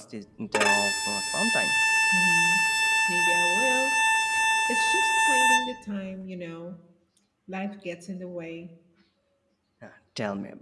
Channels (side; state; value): both; identical; correlation 1.00